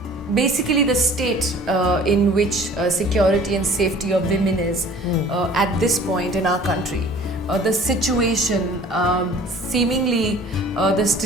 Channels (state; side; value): normal; both; correlation 0.49